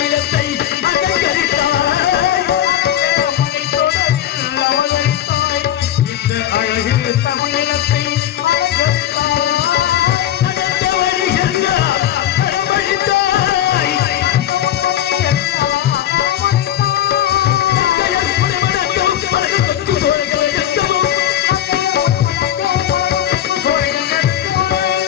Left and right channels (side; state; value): right; quieter; 11.6 dB